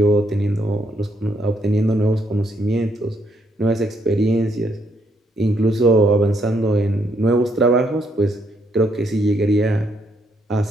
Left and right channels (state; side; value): normal; both; correlation 0.73